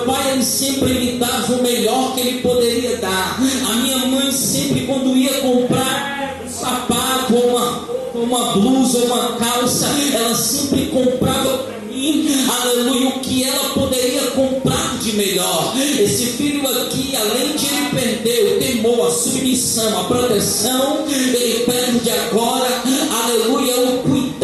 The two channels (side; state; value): both; identical; correlation 1.00